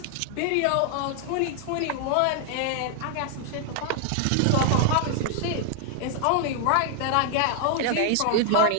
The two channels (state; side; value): different; both; correlation 0.00